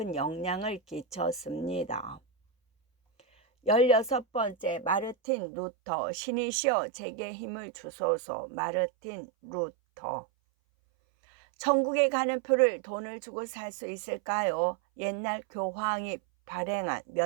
영향을 끼쳤습니다. 16번째, 마르틴 루터. 신이시여 제게 힘을 주소서. 마르틴 루터. 천국에 가는 표를 돈을 주고 살 수 있을까요? 옛날 교황이 발행한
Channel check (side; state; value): left; drops out; at 5.2 s